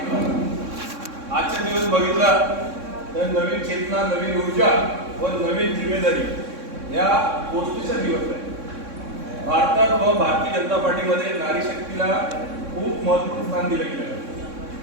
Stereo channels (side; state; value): left; late; 3.6 ms